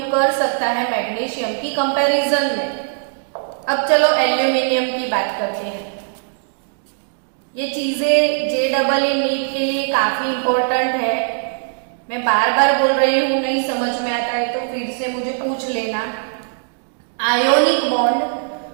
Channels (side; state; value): left; silent; digital silence